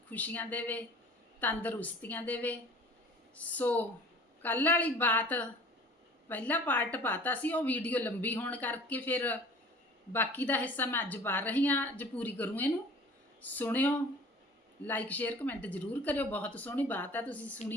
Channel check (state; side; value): normal; both; correlation 0.45